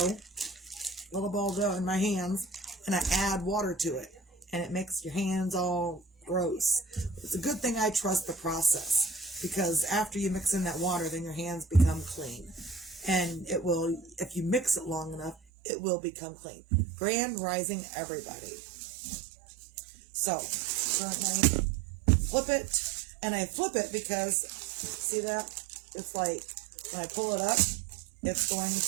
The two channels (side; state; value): left; drops out; at 15.4 s